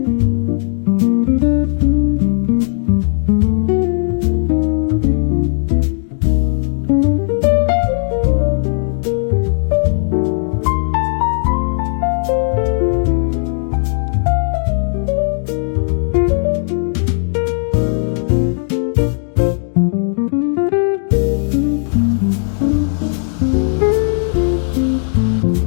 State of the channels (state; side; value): silent; right; digital silence